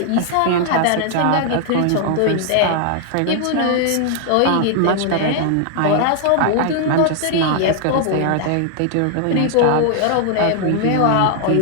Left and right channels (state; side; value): different; both; correlation 0.00